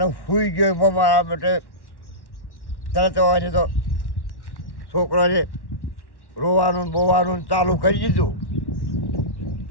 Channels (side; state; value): right; late; 1.1 ms